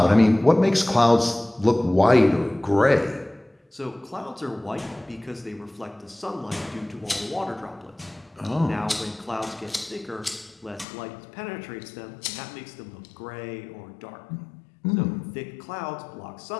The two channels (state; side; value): drops out; right; at 10.9 s